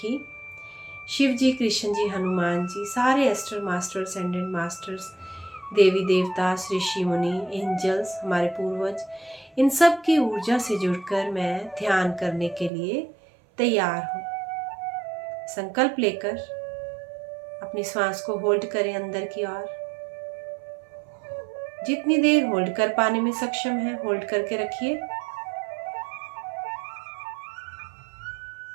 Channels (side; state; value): left; drops out; at 12.7 s